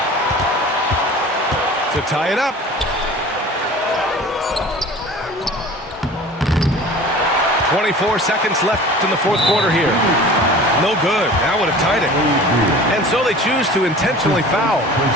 To tie it up. 24 seconds left in the fourth quarter here. No good. That would have tied it. And so they choose to intentionally foul.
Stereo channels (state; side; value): normal; both; correlation 0.41